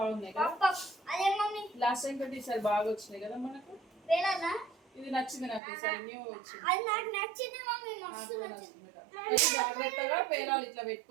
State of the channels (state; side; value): drops out; left; at 5.6 s